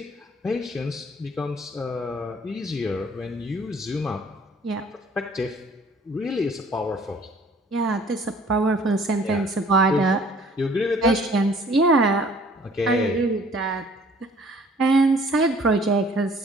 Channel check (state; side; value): normal; both; correlation 0.55